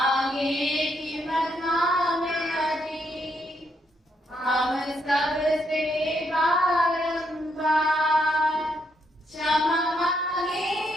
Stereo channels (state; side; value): normal; both; correlation 0.76